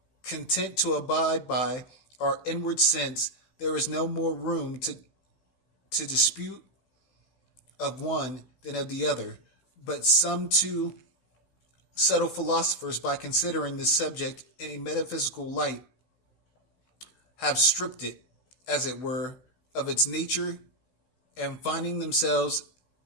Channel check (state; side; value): late; right; 16 ms